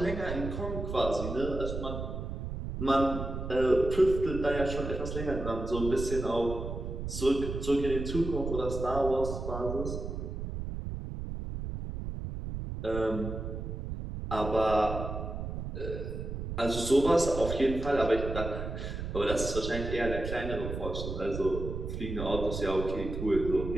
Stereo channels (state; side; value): noise; right; rumble, 5 dB below the sound